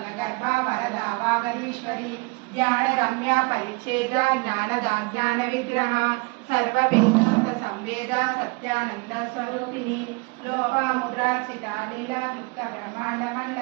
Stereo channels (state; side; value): quieter; left; 29.1 dB